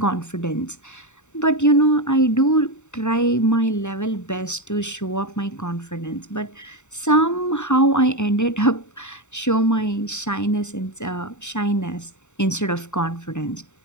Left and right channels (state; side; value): late; right; 0.84 ms